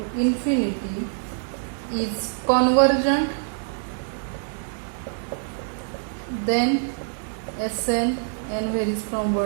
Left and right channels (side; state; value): left; silent; digital silence